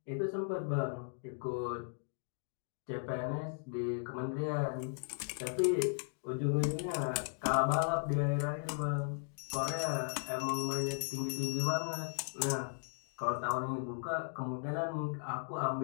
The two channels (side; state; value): right; silent; digital silence